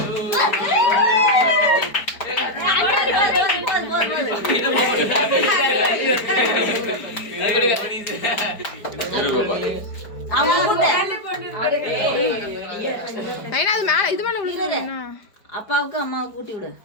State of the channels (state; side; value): late; right; 4.8 ms